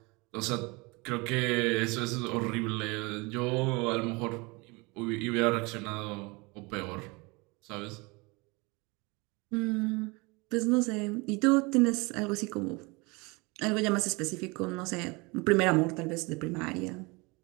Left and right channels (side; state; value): left; quieter; 26.6 dB